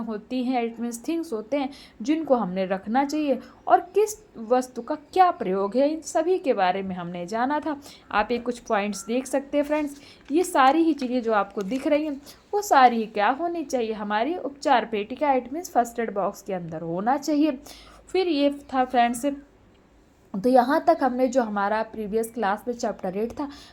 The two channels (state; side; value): identical; both; correlation 1.00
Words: हैं, इट मीन्स थिंग्स होते हैं जिनको हमने रखना चाहिए, और किस वस्तु का क्या प्रयोग है, इन सभी के बारे में हमने जाना था। आप ये कुछ पॉइंट्स देख सकते हैं फ्रेंड्स, ये सारी ही चीज़ें जो आपको दिख रही हैं वो सारी ही क्या होनी चाहिए, हमारी उपचार पेटिका, it means first aid box के अंदर होना चाहिए। फिर ये था फ्रेंड्स, तो यहाँ तक हमने जो हमारा प्रीवियस क्लास में चैप्टर 8 था